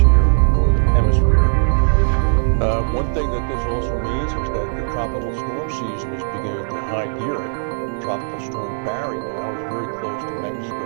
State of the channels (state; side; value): silent; left; digital silence